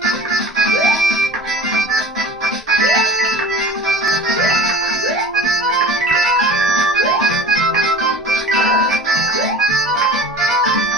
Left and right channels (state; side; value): normal; both; correlation 0.39